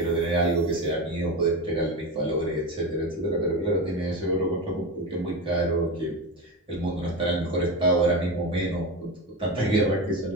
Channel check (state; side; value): normal; both; correlation 0.20